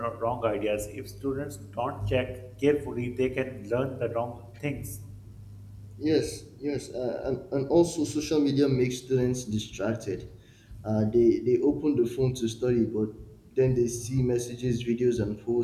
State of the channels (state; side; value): identical; both; correlation 1.00